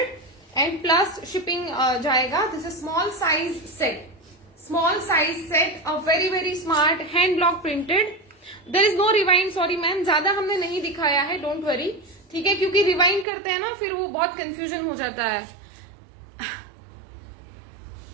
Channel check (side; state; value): left; drops out; at 13.2 s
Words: and plus shipping जाएगा। This is small size set, small size set, a very very smart hand block printed. There is no rewind, sorry ma'am, ज्यादा हमने नहीं दिखाया है, don't worry, ठीक है, क्योंकि rewind करते हैं ना फिर वो बहुत कंफ्यूजन हो जाता है।